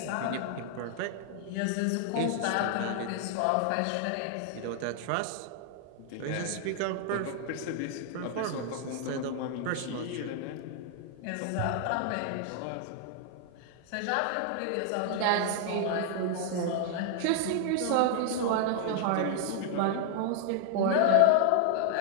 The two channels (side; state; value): both; different; correlation 0.00